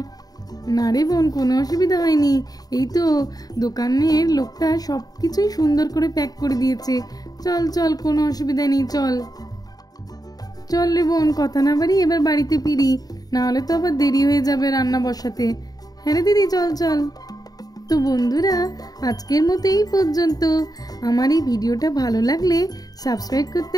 না রে বোন, কোনো অসুবিধা হয়নি, এই তো দোকানের লোকটা সব কিছুই সুন্দর করে প্যাক করে দিয়েছে। চল, কোনো অসুবিধা নেই, চল রে বোন, কথা না বাড়ি এবার বাড়িতে ফিরি, না হলে তো আবার দেরি হয়ে যাবে রান্না বসাতে। হ্যাঁ রে দিদি, চল। তো বন্ধুরা, আজকের মতো এই পর্যন্ত। আমার এই ভিডিওটা ভালো লাগলে সাবস্ক্রাইব করতে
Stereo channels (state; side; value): late; right; 0.18 ms